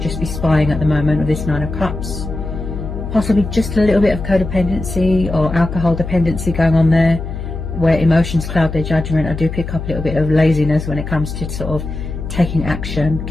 be spying at the moment with this Nine of Cups. Possibly just a little bit of codependency or alcohol dependency going on there, where emotions cloud their judgment. I do pick up a little bit of laziness when it comes to sort of taking action,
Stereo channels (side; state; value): left; noise; hum, 7 dB below the sound